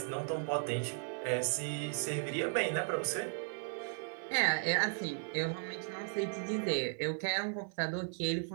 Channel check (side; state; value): left; silent; 54 dB below the other